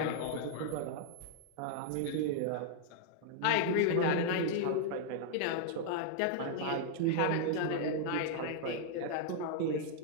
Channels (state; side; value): different; both; correlation 0.00